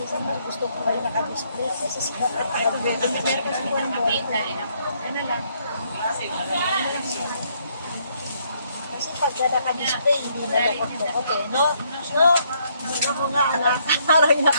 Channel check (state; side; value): inverted; both; correlation -0.70